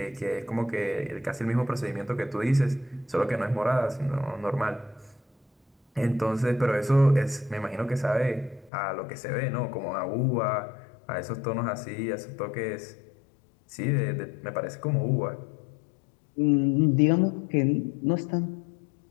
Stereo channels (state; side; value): drops out; right; at 8.7 s